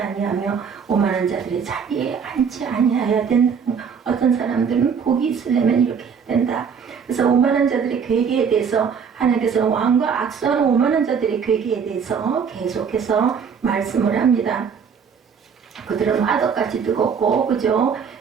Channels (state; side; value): quieter; left; 6.6 dB